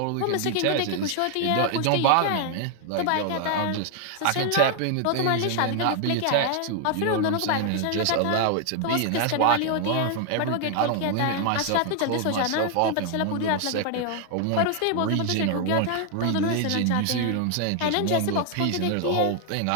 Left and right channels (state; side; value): different; both; correlation 0.00